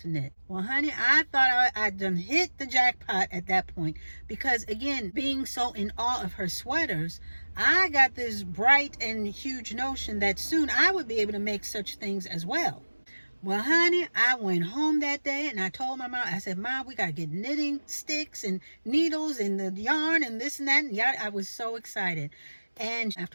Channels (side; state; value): both; inverted; correlation -1.00